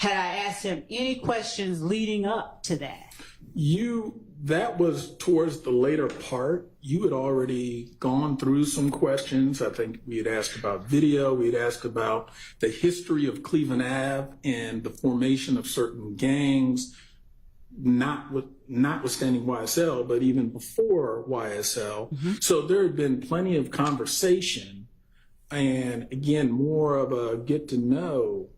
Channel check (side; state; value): both; identical; correlation 1.00